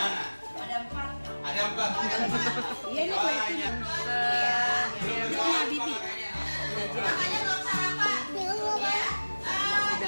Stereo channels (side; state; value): both; inverted; correlation -1.00